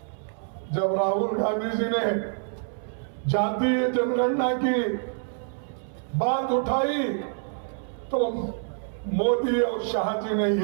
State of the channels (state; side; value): silent; left; 60 dB below the other